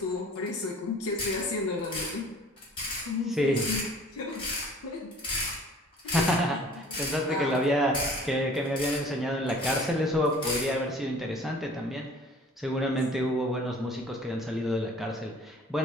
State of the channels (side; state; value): both; normal; correlation 0.49